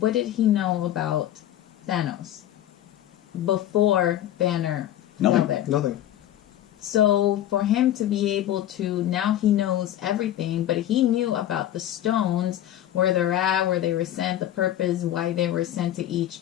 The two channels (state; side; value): quieter; right; 12.4 dB